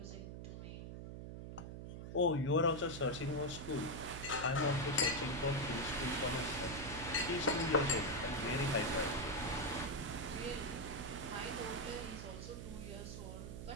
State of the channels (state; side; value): noise; right; hum, 8 dB below the sound